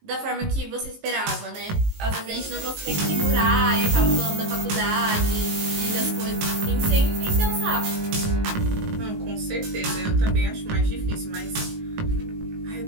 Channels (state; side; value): late; left; 19 ms